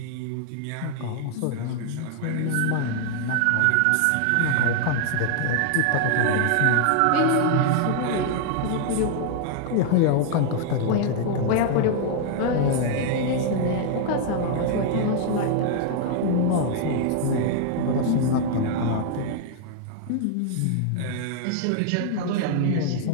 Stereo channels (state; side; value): different; both; correlation 0.00